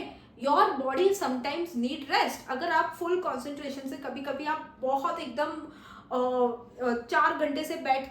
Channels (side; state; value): both; identical; correlation 1.00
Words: your body sometimes need rest. अगर आप फुल कॉन्सेंट्रेशन से, कभी कभी आप बहुत एकदम 4 घंटे से बैठ